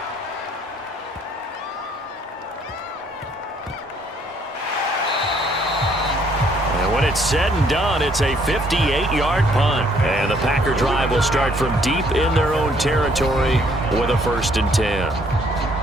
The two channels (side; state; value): both; normal; correlation 0.65